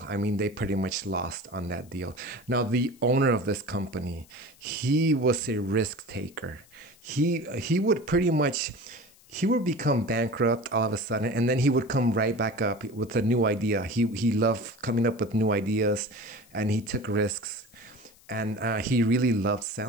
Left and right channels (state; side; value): noise; left; hiss, 27 dB below the sound